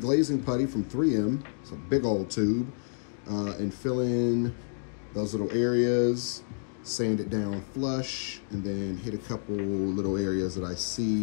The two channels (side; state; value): right; silent; digital silence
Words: putty from 3M. It's a big old tube. And fill in those little areas, sand it down flush, and then hit a couple little areas that I